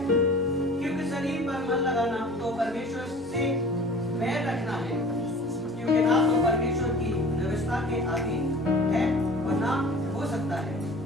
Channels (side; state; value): left; noise; hum, 30 dB below the sound